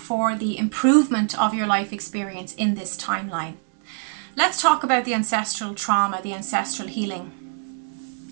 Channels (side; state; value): left; silent; 63 dB below the other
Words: the improvement of your life experience in this timeline. Let's talk about the ancestral trauma, the ancestral healing.